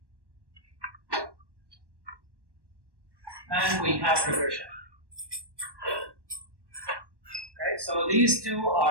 and we have regression. Okay, so these two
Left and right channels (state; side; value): late; left; 1.1 ms